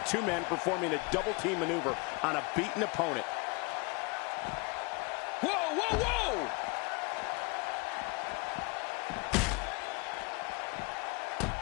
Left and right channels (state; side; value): quieter; right; 28.6 dB